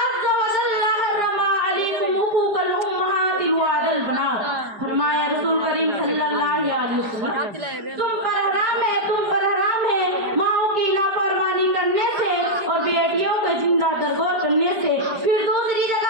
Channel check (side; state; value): left; late; 4.9 ms